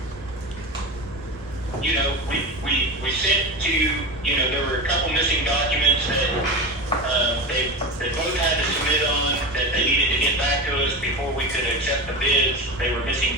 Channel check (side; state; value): both; normal; correlation 0.24